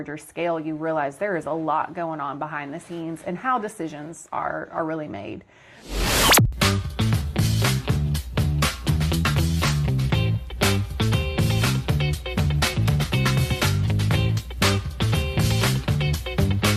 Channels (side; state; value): both; identical; correlation 1.00